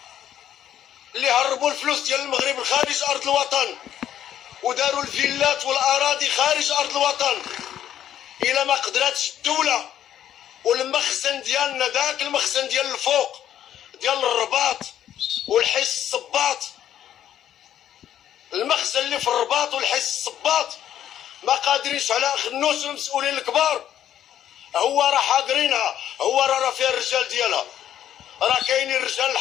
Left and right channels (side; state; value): right; quieter; 10.8 dB